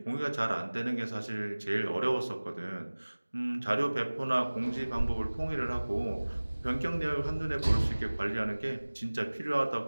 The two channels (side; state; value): both; inverted; correlation -1.00